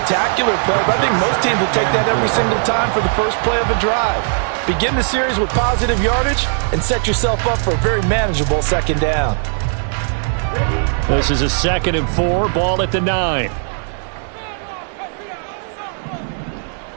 play, but I think most teams will take that every single time for the first play of a drive. Begin the series with positive yardage and set yourself up for a very manageable second down. This is a 2nd and 4, ball at the 9.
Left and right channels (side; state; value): left; silent; 66 dB below the other